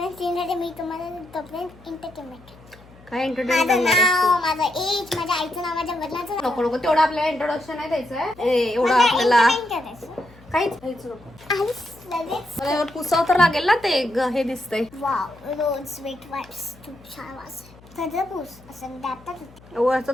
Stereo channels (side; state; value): left; noise; hum, 24 dB below the sound